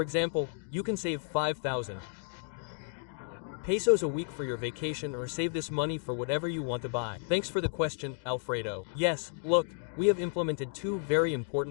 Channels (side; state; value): right; silent; digital silence